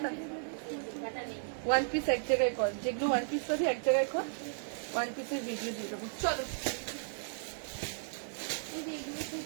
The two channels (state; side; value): silent; left; digital silence